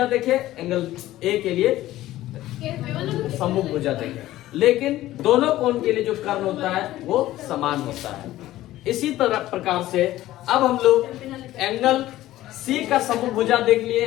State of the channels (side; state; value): right; quieter; 15.2 dB